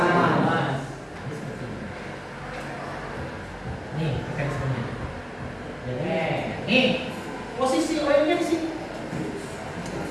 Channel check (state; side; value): identical; both; correlation 1.00